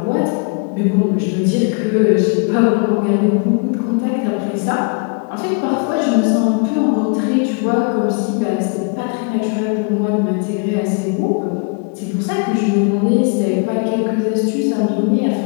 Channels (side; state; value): right; quieter; 35.5 dB